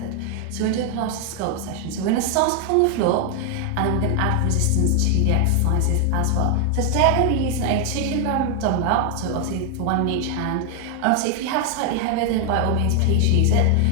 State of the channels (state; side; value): different; both; correlation 0.00